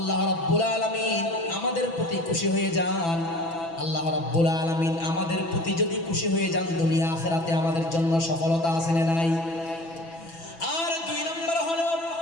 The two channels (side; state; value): right; late; 6.0 ms